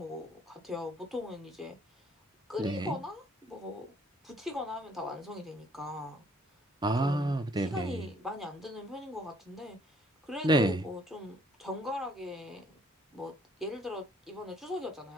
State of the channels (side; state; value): both; normal; correlation 0.63